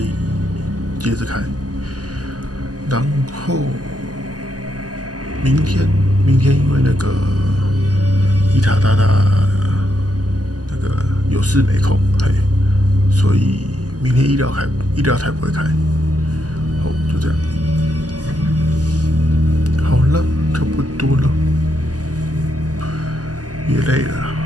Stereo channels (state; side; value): late; left; 0.67 ms